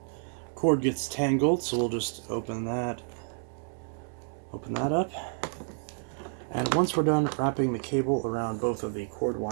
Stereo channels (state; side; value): silent; left; digital silence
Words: cord gets tangled, so we'll just open that up. And once we're done wrapping the cable around both of the cord